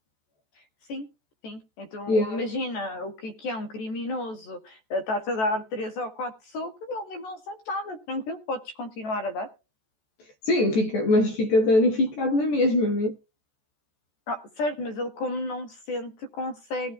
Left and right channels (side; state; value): right; late; 14 ms